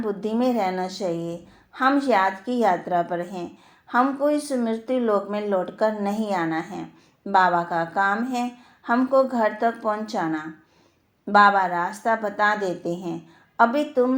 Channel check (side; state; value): both; identical; correlation 1.00